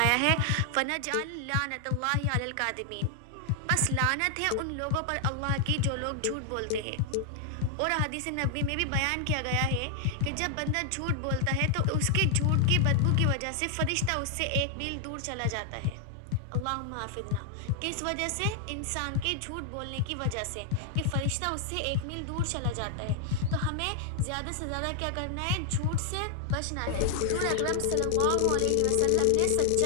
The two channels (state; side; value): different; both; correlation 0.00